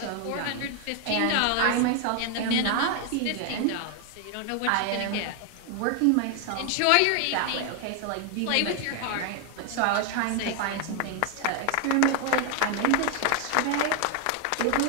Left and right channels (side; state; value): both; different; correlation 0.00